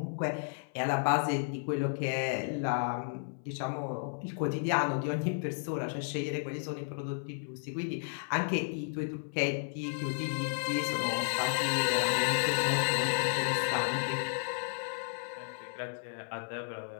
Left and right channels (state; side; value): silent; right; 56 dB below the other